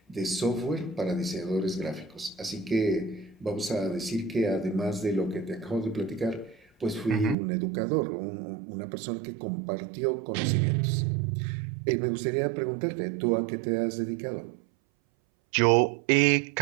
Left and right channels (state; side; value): drops out; left; at 7.4 s